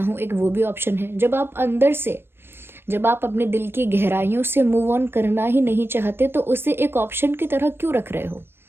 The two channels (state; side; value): late; left; 0.11 ms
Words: हूँ, एक वो भी ऑप्शन है। जब आप अंदर से, जब आप अपने दिल की गहराइयों से मूव ऑन करना ही नहीं चाहते तो उसे एक ऑप्शन की तरह क्यों रख रहे हो?